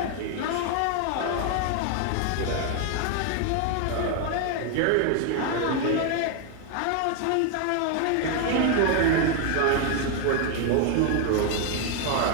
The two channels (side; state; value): both; different; correlation 0.01